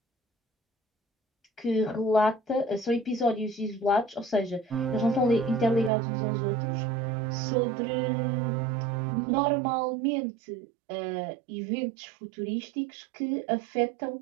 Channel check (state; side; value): drops out; left; at 5.9 s